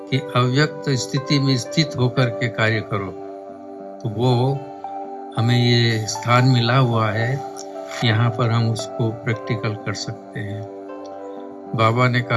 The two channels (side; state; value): both; identical; correlation 1.00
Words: कि अव्यक्त स्थिति में स्थित होकर के कार्य करो, तो वो हमें ये स्थान मिला हुआ है, यहाँ पर हम उसको प्रैक्टिकल कर सकते हैं। बाबा ने